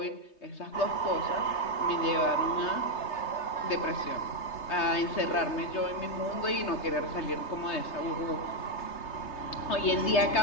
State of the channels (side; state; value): right; late; 3.3 ms